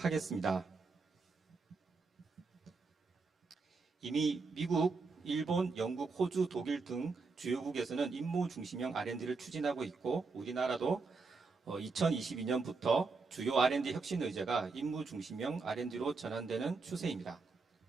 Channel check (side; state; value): left; quieter; 4.2 dB